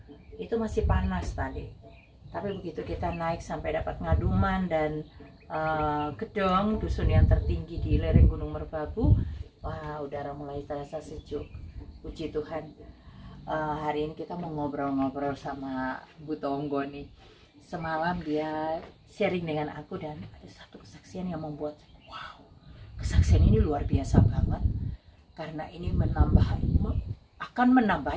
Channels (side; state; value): both; identical; correlation 1.00